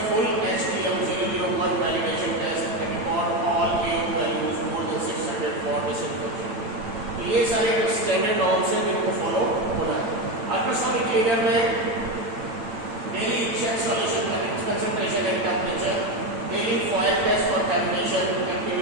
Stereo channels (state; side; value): late; left; 8.9 ms